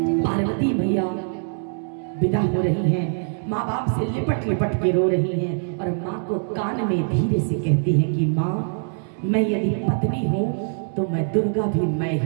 पार्वती मैया विदा हो रही हैं, माँ बाप से लिपट लिपट के रो रही हैं और माँ को कान में धीरे से कहती हैं कि माँ, मैं यदि पत्नी हूं तो मैं दुर्गा भी मैं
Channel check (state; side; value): silent; left; 63 dB below the other